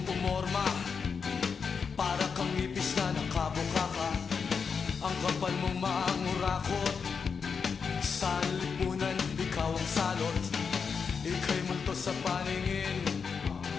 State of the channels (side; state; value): right; quieter; 5.9 dB